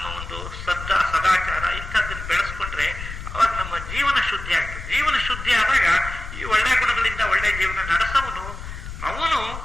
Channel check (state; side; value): noise; left; rumble, 9 dB below the sound